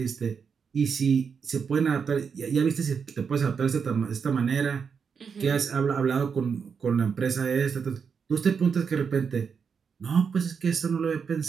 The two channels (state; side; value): quieter; left; 6.2 dB